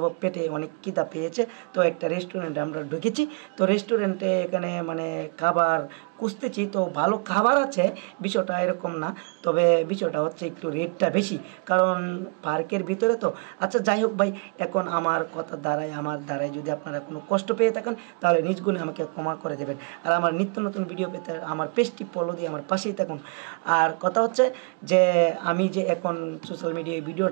পেটে অনেক খিদা পেয়েছে। তো একটা রেস্টুরেন্টে আমরা ঢুকেছি। তো রেস্টুরেন্টে এখানে মানে খাবার খুঁজতেছি, তো ভালো খাবার আছে, বিষয়টা এরকম না। তবে বিষয়টা হচ্ছে একটু রেটটা বেশি, কারণ পার্কের ভিতরে তো। আচ্ছা যাই হোক ভাই, এখন আমার আমার দ্বারায় যদি আপনারা কোনো কষ্ট পেয়ে থাকেন তাহলে নিজ গুণে আমাকে ক্ষমা করে দেবেন। আর আমার নিত্য নতুন ভিডিও পেতে আমার পেজটি ফলো দিয়ে আমার পাশেই থাকুন। আর কথা হচ্ছে যে আমি যে এখন সোশ্যাল মিডিয়ায়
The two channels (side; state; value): left; quieter; 34.8 dB